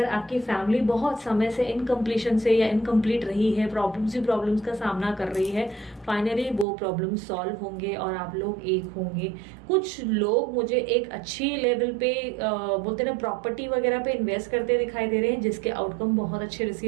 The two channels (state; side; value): drops out; left; at 6.7 s